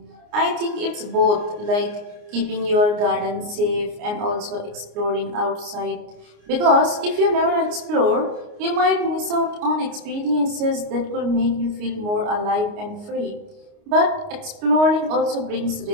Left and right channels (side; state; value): left; late; 29 ms